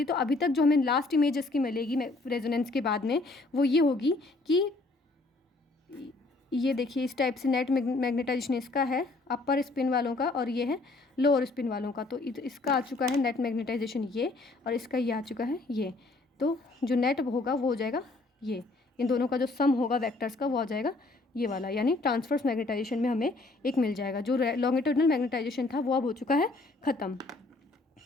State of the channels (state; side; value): quieter; right; 3.2 dB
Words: तो अभी तक जो हमें लास्ट इमेज इसकी मिलेगी रेजोनेंस के बाद में वो ये होगी कि ये देखिए इस टाइप से नेट मैग्नेटाइजेशन इसका है अपर स्पिन वालों का और ये है लोअर स्पिन वालों का। तो इसका आ चुका है नेट मैग्नेटाइजेशन ये, और इसका ये आ चुका है ये। तो जो नेट होगा वो हो जाएगा ये, इन दोनों का जो सम होगा वेक्टर्स का वो आ जाएगा ये वाला, यानी ट्रांसवर्स मैग्नेटाइजेशन में हमें एक मिल जाएगा। जो लॉन्गिट्यूडनल मैग्नेटाइजेशन था वो अब हो चुका है ख़त्म।